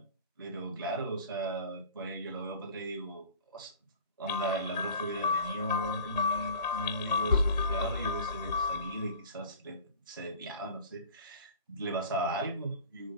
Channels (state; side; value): inverted; both; correlation -0.43